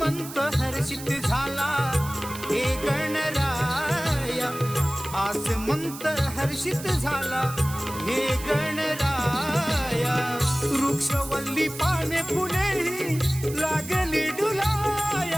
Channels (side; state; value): right; noise; hiss, 13 dB below the sound